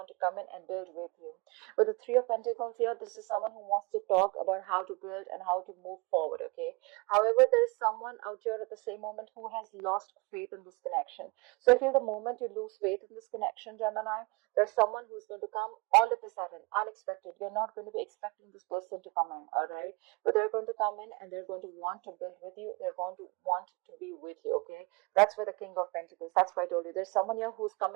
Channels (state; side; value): quieter; left; 27.5 dB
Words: to come in and build with you. With the Three of Pentacles here, this is someone who wants to talk about how to build and how to move forward, okay? However, there is someone out here at the same moment who has lost faith in this connection. So I feel the moment you lose faith in this connection, Gemini, there's someone who's going to come all of a sudden, unexpected. You're not going to be expecting this person to come in, all right? But they're going to come in and they're going to want to build with you. They're going to want to be with you, okay? That's where the King of Pentacles, that's why I told you. There's someone here who's